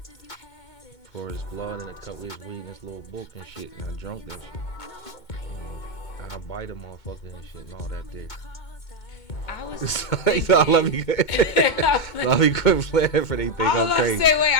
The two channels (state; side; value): late; right; 2.2 ms